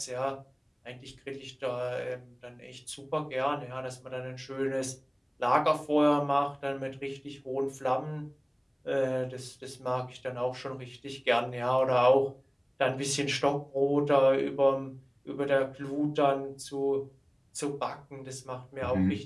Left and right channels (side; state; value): both; identical; correlation 1.00